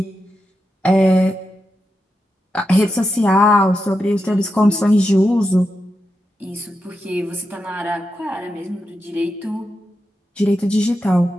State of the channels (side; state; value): both; normal; correlation 0.87